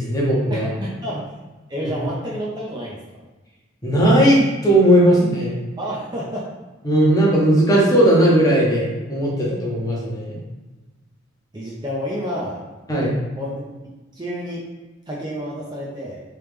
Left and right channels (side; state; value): both; normal; correlation 0.53